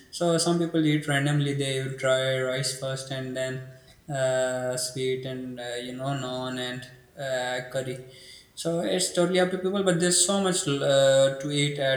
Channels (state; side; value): identical; both; correlation 1.00